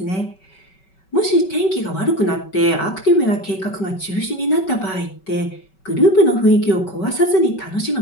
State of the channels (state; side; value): late; right; 5.3 ms